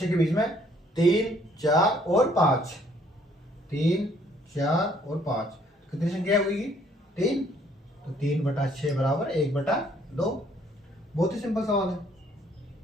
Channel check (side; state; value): both; normal; correlation 0.63